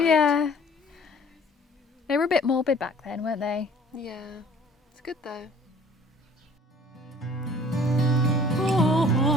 Yeah. They were a bit morbid back then, weren't they? Yeah, it's good though. All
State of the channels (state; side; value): normal; both; correlation 0.52